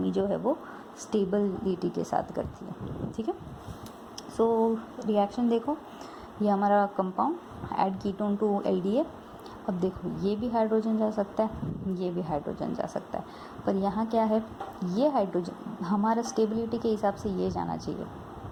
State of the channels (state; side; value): identical; both; correlation 1.00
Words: जो है वो स्टेबिलिटी के साथ करती है। ठीक है, सो रिएक्शन देखो, ये हमारा compound add ketone to LDA, अब देखो ये भी हाइड्रोजन जा सकता है, ये भी हाइड्रोजन जा सकता है, पर यहाँ क्या है, ये हाइड्रोजन हमारा स्टेबिलिटी के हिसाब से ये जाना चाहिए,